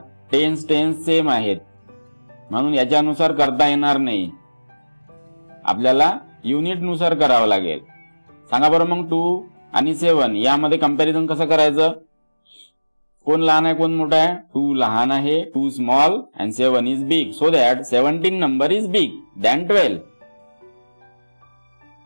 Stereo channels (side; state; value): both; inverted; correlation -1.00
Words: टेन्स सेम आहेत म्हणून याच्यानुसार करता येणार नाही. आपल्याला युनिट नुसार करावं लागेल. सांगा बरं मग 2 आणि 7 यामध्ये कंपॅरिझन कसं करायचं? कोण लहान आहे, कोण मोठा आहे? 2 लहान आहे, 2 small and 7 is big. So that 17 number is big than 12.